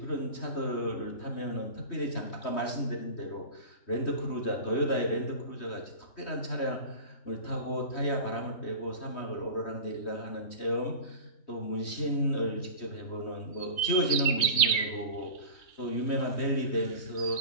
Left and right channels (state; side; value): late; right; 3.1 ms